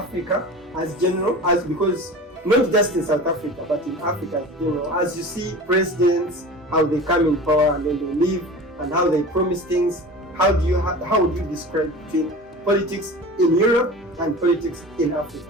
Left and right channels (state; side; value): normal; both; correlation 0.36